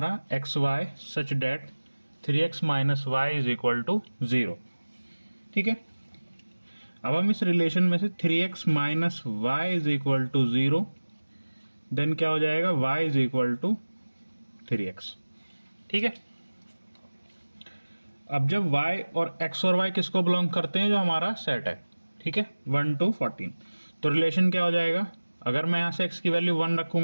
xy such that 3x minus y is equal to 0. ठीक है, अब हम इस रिलेशन में से 3x minus Y is equal to 0 then क्या हो जाएगा y is equal to 3x. ठीक है, अब जब y और x और y किसको बिलोंग करते हैं, जो हमारा सेट है, ठीक है, 1 to 14, तो रिलेशन क्या हो जाएगा, अगर मैं यहां से x की वैल्यू 1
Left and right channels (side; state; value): both; inverted; correlation -1.00